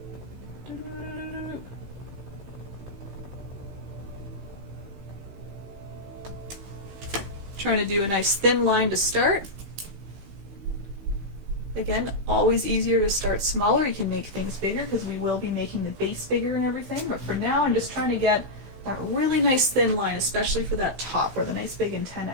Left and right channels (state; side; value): late; left; 16 ms